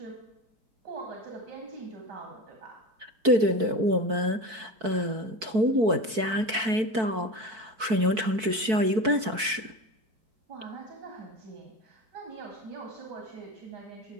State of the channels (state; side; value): late; left; 4.6 ms